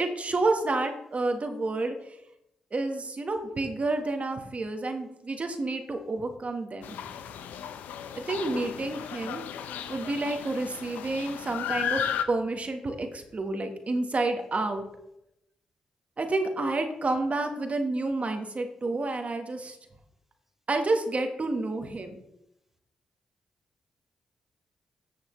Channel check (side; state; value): both; normal; correlation 0.82